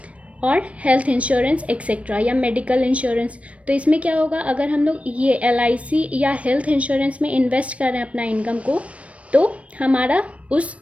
और हेल्थ इंश्योरेंस एक्सेट्रा या मेडिकल इंश्योरेंस। तो इसमें क्या होगा, अगर हम लोग ये LIC या हेल्थ इंश्योरेंस में इन्वेस्ट कर रहे हैं अपना इनकम को, तो हमारा उस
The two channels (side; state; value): left; late; 0.064 ms